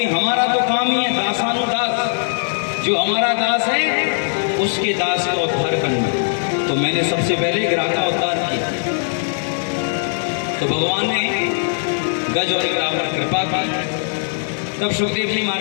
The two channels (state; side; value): silent; right; digital silence